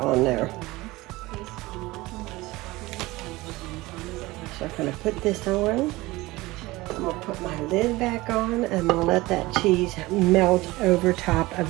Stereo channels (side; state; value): left; quieter; 20.1 dB